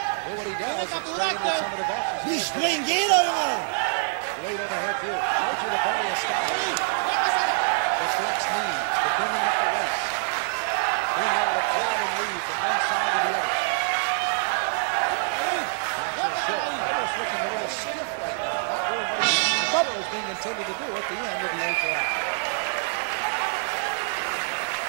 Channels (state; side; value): silent; left; digital silence